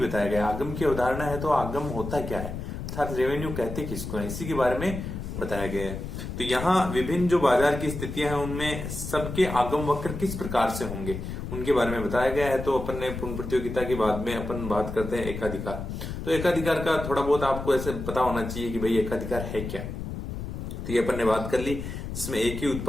गया। आगम की अवधारणा है तो आगम होता क्या है, अर्थात रेवेन्यू कहते किसको है, इसी के बारे में बताया गया है। तो यहाँ विभिन्न जो बाजार की स्थितियां हैं उनमें सबके आगम वक्र किस प्रकार से होंगे उनके बारे में बताया गया है। तो अपन ने पूर्ण प्रतियोगिता के बाद में अपन बात करते हैं एकाधिकार। तो एकाधिकार का थोड़ा बहुत आपको ऐसे पता होना चाहिए कि भाई एकाधिकार है क्या। तो ये अपन ने बात कर ली, जिसमें एक ही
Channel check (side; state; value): left; noise; rumble, 7 dB below the sound